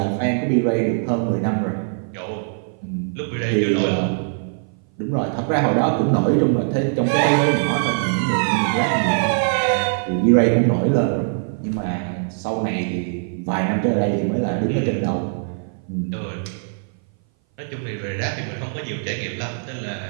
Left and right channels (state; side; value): silent; left; 59 dB below the other